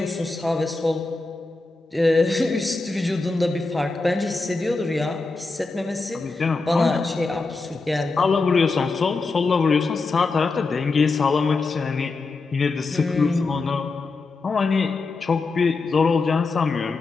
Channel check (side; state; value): right; quieter; 3.8 dB